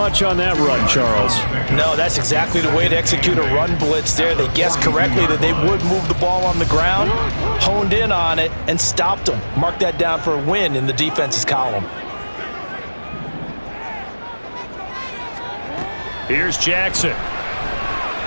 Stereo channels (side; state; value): both; inverted; correlation -1.00